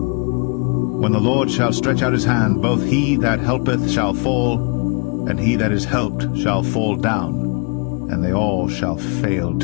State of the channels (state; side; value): quieter; right; 34.2 dB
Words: the Lord shall stretch out his hand, both he that helpeth shall fall, and he that is helped shall fall down, and they all shall fail